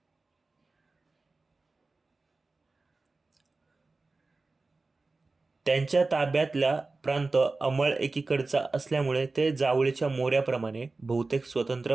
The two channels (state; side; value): quieter; left; 3.6 dB